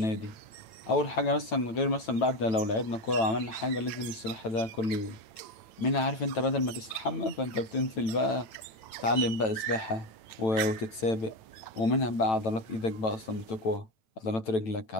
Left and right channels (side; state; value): right; late; 9.0 ms